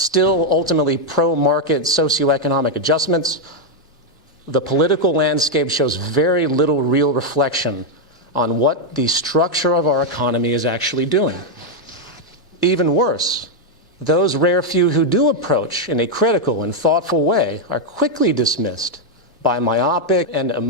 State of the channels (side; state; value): both; normal; correlation 0.01